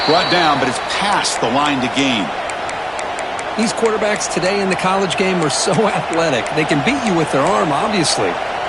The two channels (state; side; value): identical; both; correlation 1.00